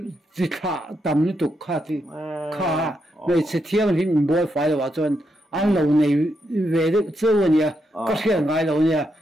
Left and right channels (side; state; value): both; normal; correlation 0.81